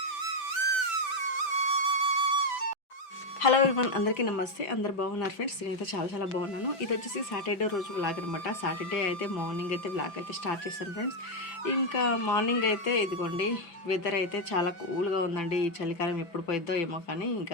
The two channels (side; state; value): right; late; 5.9 ms